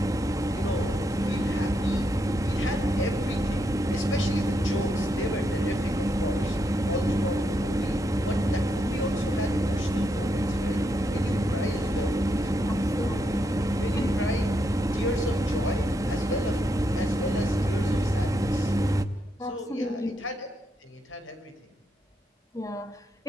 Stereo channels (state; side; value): normal; both; correlation 0.80